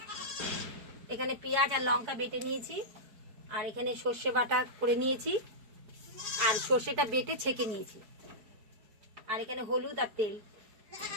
এখানে পেঁয়াজ আর লঙ্কা বেটে নিয়েছি, আর এখানে সর্ষে বাটা করে নিয়েছি, আর সর্ষেটা বেটে ছেঁকে নিয়েছি, আর এখানে হলুদ আর তেল।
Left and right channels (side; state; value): left; late; 4.6 ms